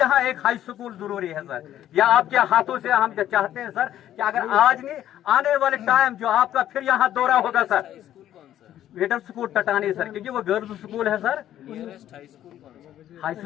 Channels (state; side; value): quieter; right; 11.9 dB